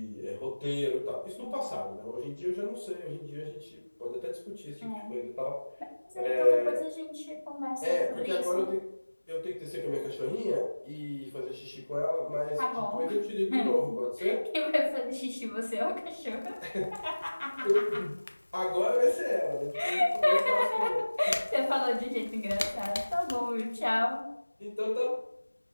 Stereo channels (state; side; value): inverted; both; correlation -1.00